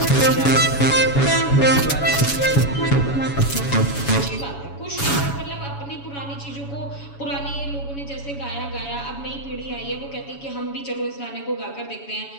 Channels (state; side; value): late; right; 7.1 ms